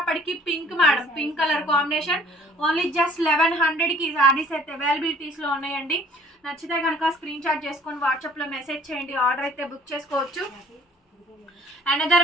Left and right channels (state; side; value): normal; both; correlation 0.55